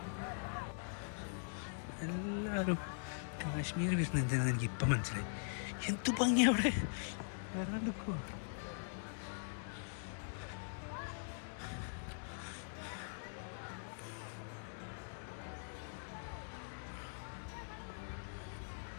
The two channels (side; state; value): right; silent; digital silence